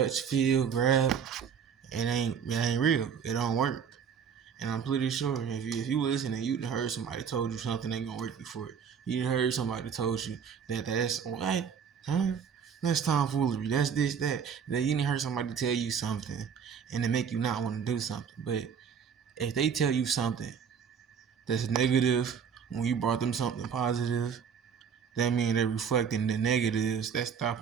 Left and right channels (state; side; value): quieter; left; 7.1 dB